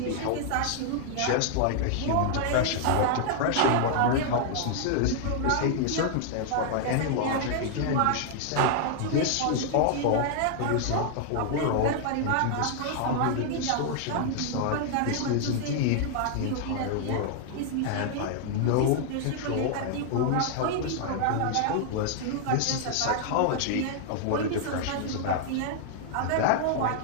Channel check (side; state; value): both; different; correlation 0.00